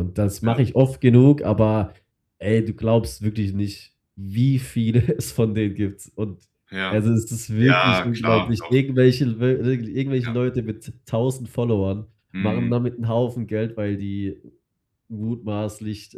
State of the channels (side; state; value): both; identical; correlation 1.00